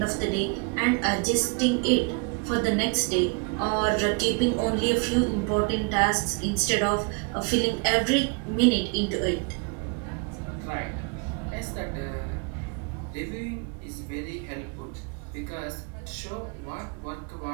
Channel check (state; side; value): quieter; left; 32.9 dB